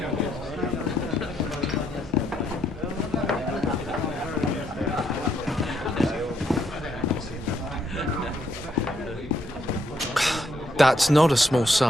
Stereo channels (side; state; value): both; normal; correlation 0.74